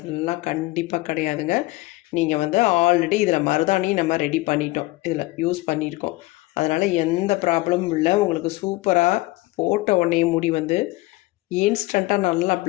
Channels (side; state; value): right; quieter; 20.3 dB